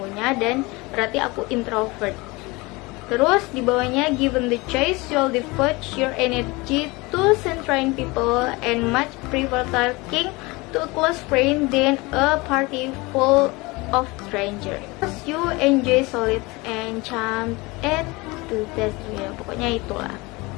dan berarti aku introvert. Terus di bawahnya, given the choice, you'll devote your energy to centering people and much prefer talking to a close friend than a party full of strangers. You enjoy solid and charm at to test, ya pokoknya itulah.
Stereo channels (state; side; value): quieter; right; 24.0 dB